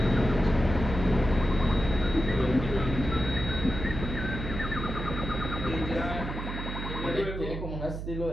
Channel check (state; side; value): noise; right; hum, 6 dB below the sound